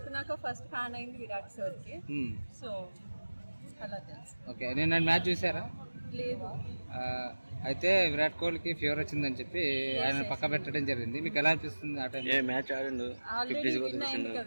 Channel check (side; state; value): both; inverted; correlation -1.00